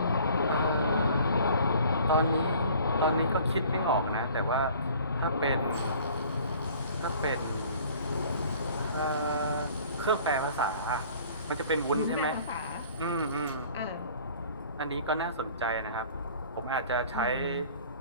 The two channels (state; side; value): inverted; both; correlation -0.50